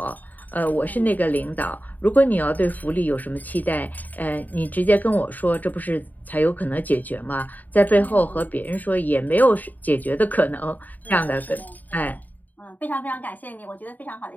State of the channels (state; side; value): late; right; 0.083 ms